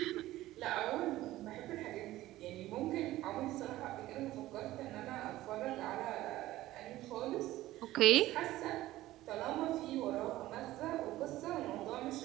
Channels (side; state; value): left; quieter; 16.0 dB